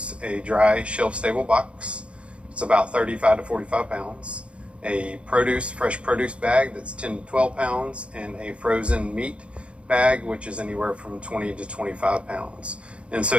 a dry shelf-stable box. It's about 35 to 45 pounds. A fresh produce bag that's 10 to 12 pounds, and a frozen meat bag, which is anywhere from 20 to 25 pounds. And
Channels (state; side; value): late; left; 0.060 ms